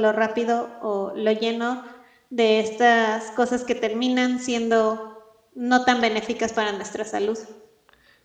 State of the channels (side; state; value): both; identical; correlation 1.00